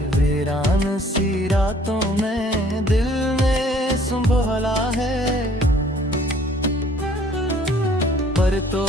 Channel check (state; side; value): normal; both; correlation 0.57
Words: वीरान सी रातों में दिल ने संभाला है। पर तो